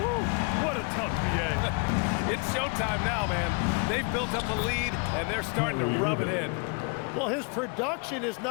what a tough BA. It's showtime now, man. They've built up a lead, and they're starting to rub it in. Well, his production is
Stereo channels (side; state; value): right; quieter; 33.7 dB